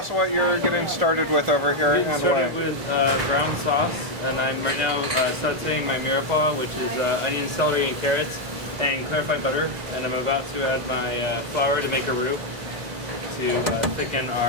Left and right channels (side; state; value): left; late; 2.1 ms